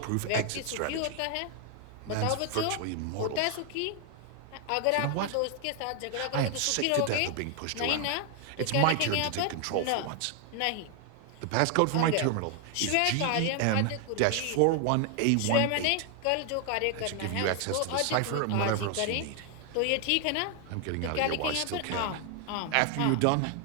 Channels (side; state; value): both; different; correlation 0.00